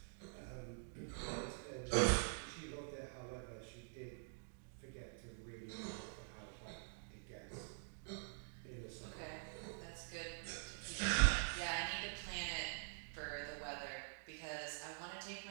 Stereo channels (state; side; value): silent; left; digital silence